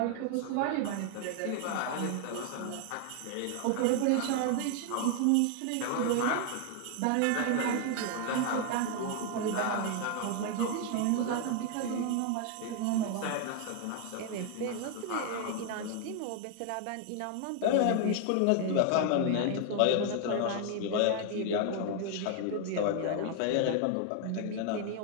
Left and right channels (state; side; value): different; both; correlation 0.00